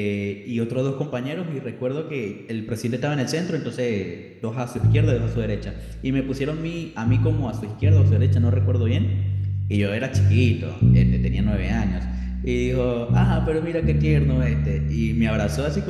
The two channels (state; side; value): identical; both; correlation 1.00